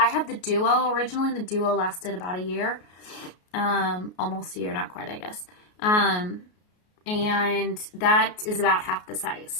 have the Duo originally, and the Duo lasted about a year. Almost a year, not quite, I guess. And that is about half the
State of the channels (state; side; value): late; right; 33 ms